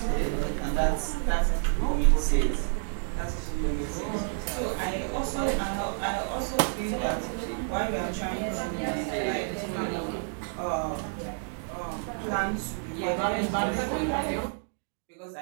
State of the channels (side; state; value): left; silent; digital silence